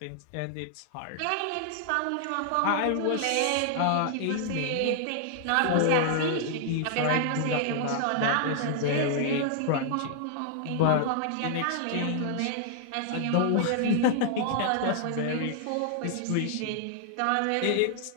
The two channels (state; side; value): different; both; correlation -0.01